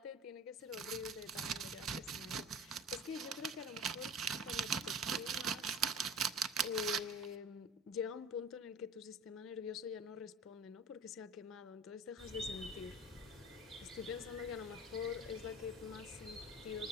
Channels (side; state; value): both; normal; correlation 0.42